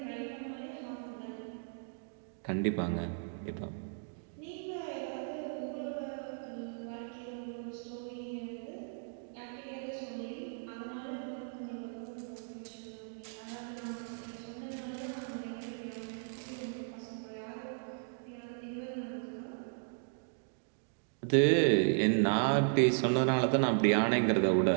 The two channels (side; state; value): left; silent; digital silence